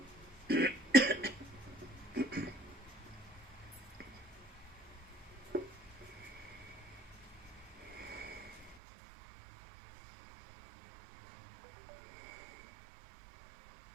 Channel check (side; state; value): left; drops out; at 8.8 s